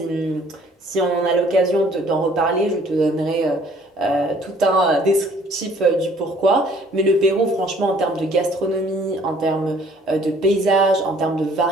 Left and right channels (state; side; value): normal; both; correlation 0.58